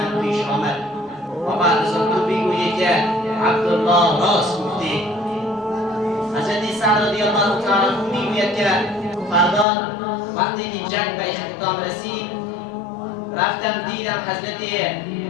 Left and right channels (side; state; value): right; drops out; at 9.7 s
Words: پیش آمد. و بعد از آن تو بگویی که عبدالله راست گفتی. حضرت سعد رضی الله تعالی عنه میگوید که فردا وقتی که جنگ به اختتام رسید رفتم دیدم حضرت